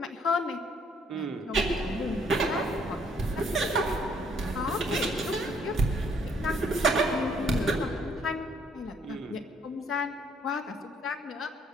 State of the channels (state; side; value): normal; both; correlation 0.66